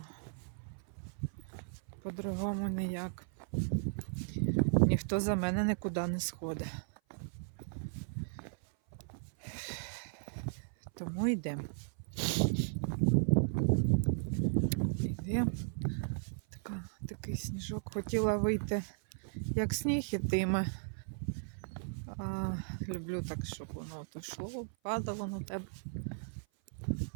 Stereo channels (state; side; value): silent; left; 54 dB below the other